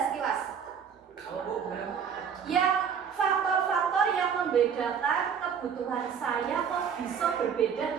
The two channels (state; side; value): quieter; left; 7.2 dB